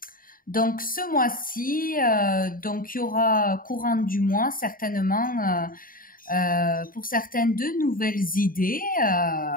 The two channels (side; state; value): right; late; 0.41 ms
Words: Donc, ce mois-ci, donc il y aura courant du mois certainement pour certaines de nouvelles idées.